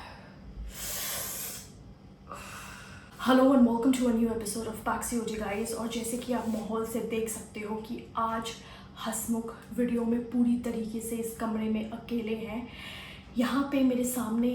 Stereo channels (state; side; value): identical; both; correlation 1.00